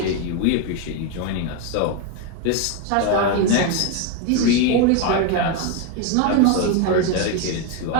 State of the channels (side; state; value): both; different; correlation 0.02